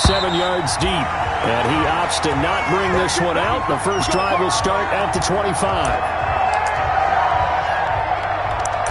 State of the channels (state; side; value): identical; both; correlation 1.00